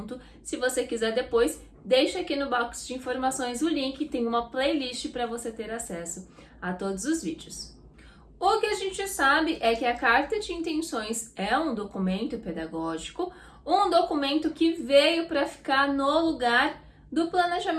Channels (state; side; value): identical; both; correlation 1.00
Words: Se você quiser depois, deixa aqui no box de informações o link, tem uma playlist para você ter acesso a todos os vídeos. O que a gente sabe é que a carta de intenções é um documento pedagógico, um documento que veio para ficar no lugar do